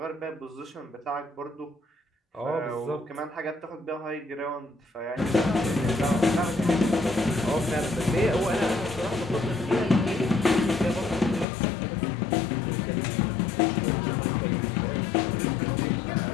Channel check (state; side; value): drops out; right; at 11.5 s